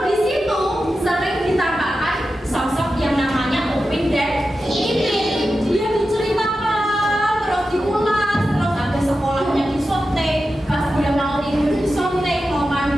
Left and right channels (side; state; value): both; normal; correlation 0.91